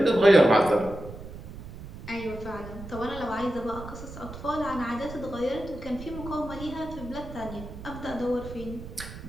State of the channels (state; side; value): noise; right; rumble, 12 dB below the sound